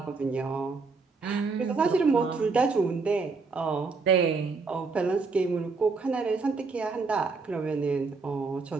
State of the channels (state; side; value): quieter; left; 4.3 dB